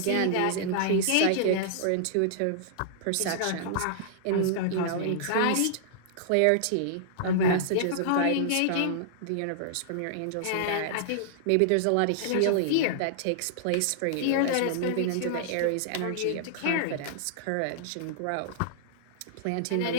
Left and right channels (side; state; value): both; different; correlation -0.01